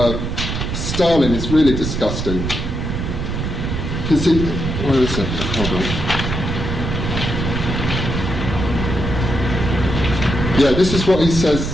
Stalin is really disgusting. Because where is it? Hold on. Yeah, this is what he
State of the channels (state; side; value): noise; right; rumble, 3 dB below the sound